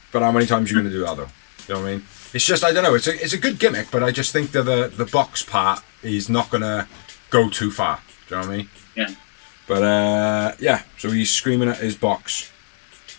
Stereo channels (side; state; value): right; silent; 65 dB below the other